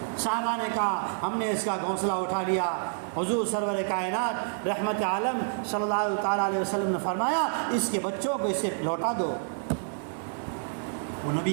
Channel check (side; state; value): left; silent; 59 dB below the other